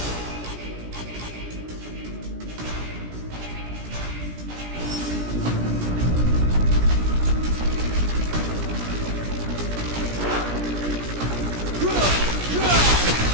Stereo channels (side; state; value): left; late; 17 ms